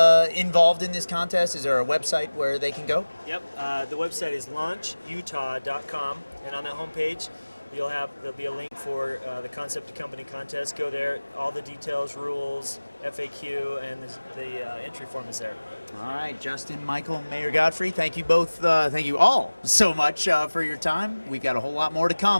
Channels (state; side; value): inverted; both; correlation -1.00